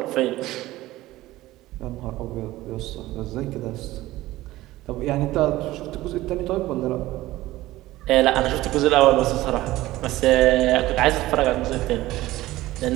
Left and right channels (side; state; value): left; quieter; 17.0 dB